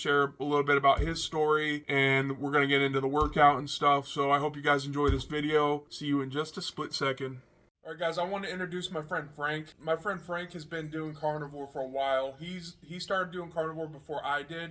a little bit about his story, and we're going to get into the workout and stuff. So I hope you guys enjoy this video. See you in just a split second. Alright guys, I want to introduce my friend Frank. My friend Frank has been doing Carnivore for a while. He started doing Carnivore before I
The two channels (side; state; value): both; identical; correlation 1.00